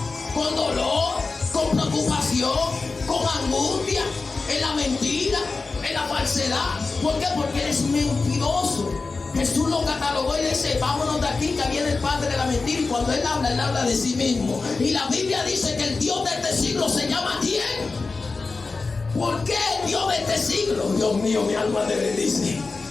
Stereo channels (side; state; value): right; quieter; 4.0 dB